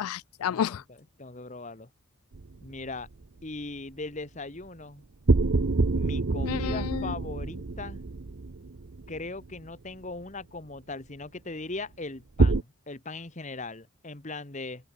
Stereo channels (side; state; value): both; normal; correlation 0.57